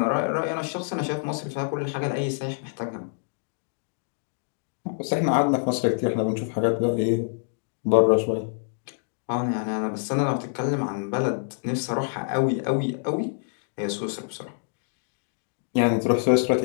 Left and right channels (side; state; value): right; silent; digital silence